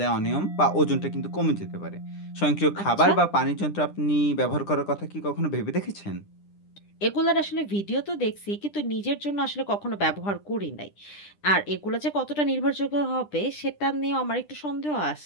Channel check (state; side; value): late; right; 10 ms